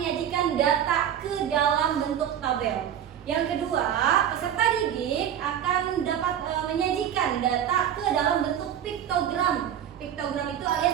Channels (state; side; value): quieter; left; 9.7 dB